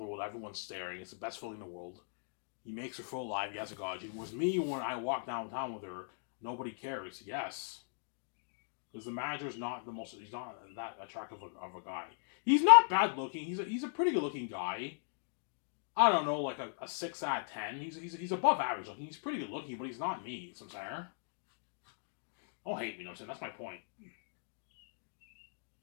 the world. Everyone's staring. It's the best feeling in the world. He makes her feel alive. He has a God gene. With me, when I walk downtown with her, nobody cares. Yes. Because the manager's not the most. He's not that attractive of a guy. He's not bad looking. He's a pretty good looking guy. I don't know, like a 6 out of 10. He's above average looking. He's pretty good looking, but he's not me. So I'm saying. Don't hate me, you know what I'm saying? That's my point.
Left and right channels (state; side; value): silent; right; digital silence